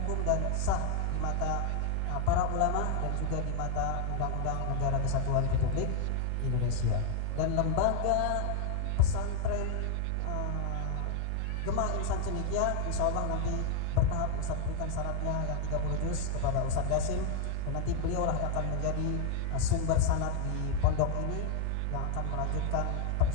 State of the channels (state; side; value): different; both; correlation 0.00